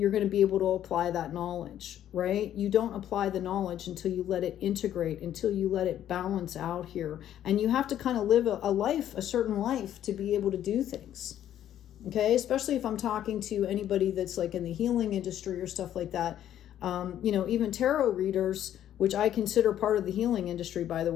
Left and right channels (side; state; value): right; quieter; 11.2 dB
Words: going to be able to apply that knowledge, right? You don't apply the knowledge until you let it integrate, until you let it balance out here. And you have to kind of live a life, a certain life, to be able to do things. Okay? Especially if I'm talking to anybody that's like in the healing industry or stuff like that. Even tarot readers, which I consider part of the healing industry, by the